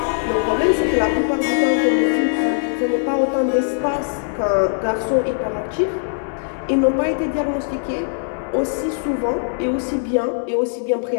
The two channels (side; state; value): right; silent; 65 dB below the other